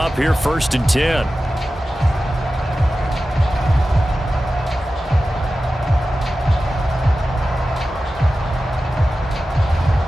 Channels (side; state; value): both; normal; correlation 0.94